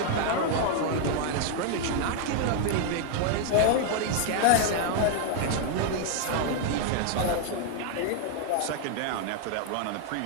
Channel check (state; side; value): different; both; correlation 0.00